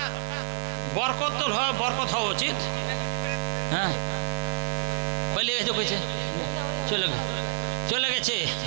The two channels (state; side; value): silent; left; 59 dB below the other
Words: বরকত তো বরকত হওয়া উচিত। হ্যাঁ বলে গেছে কইছে চলে গেছে